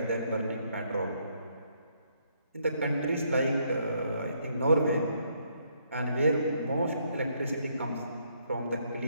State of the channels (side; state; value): both; inverted; correlation -0.72